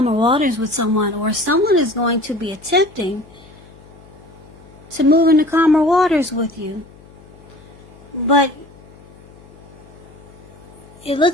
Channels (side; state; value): left; noise; hum, 23 dB below the sound